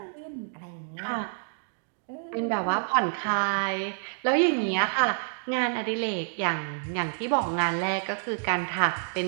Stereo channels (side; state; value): left; silent; digital silence